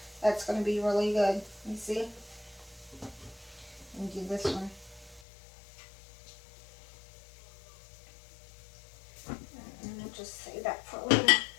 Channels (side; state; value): right; drops out; at 5.2 s